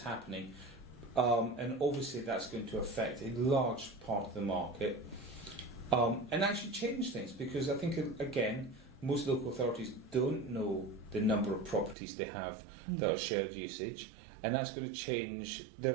And obviously that's going to affect a large part of the market and actually change things because I think, again, most local authorities don't know the number of properties they have that are shared usage, and that's going to change their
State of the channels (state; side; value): drops out; left; at 12.0 s